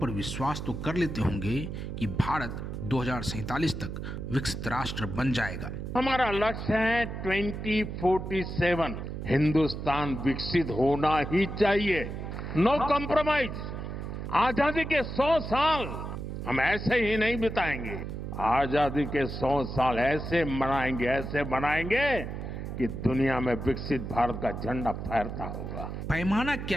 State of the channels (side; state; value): right; noise; hum, 6 dB below the sound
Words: विश्वास तो कर लेते होंगे कि भारत 2047 तक विकसित राष्ट्र बन जाएगा। हमारा लक्ष्य है 2047 हिंदुस्तान विकसित होना ही चाहिए, नो कॉम्प्रोमाइज। आजादी के 100 साल हम ऐसे ही नहीं बिताएंगे, आजादी के 100 साल ऐसे बनाएंगे कि दुनिया में विकसित भारत का झंडा फहरता होगा। पैमाना